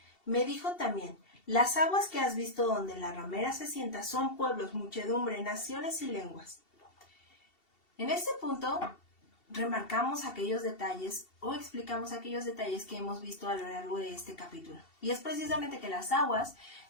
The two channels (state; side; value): late; right; 2.7 ms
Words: Me dijo también, las aguas que has visto donde la ramera se sienta son pueblos, muchedumbre, naciones y lenguas. En este punto remarcamos aquellos detalles o explicamos aquellos detalles que hemos visto a lo largo de este capítulo. Y es precisamente que las aguas,